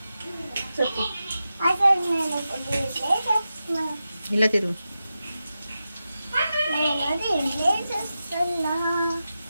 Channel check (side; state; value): both; inverted; correlation -0.91